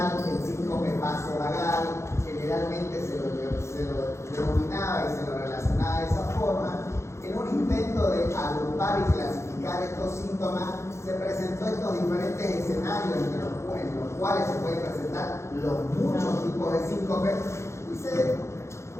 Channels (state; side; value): late; right; 0.13 ms